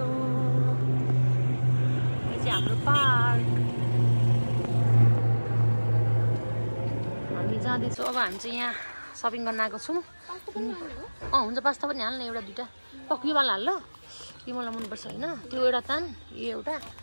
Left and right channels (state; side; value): inverted; both; correlation -1.00